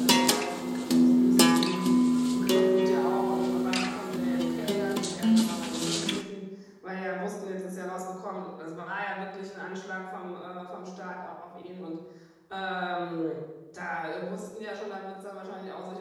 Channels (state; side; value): identical; both; correlation 1.00